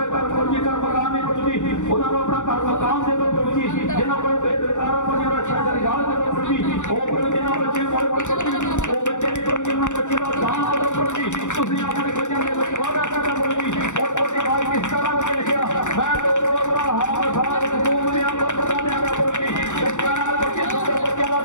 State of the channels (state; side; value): late; right; 0.85 ms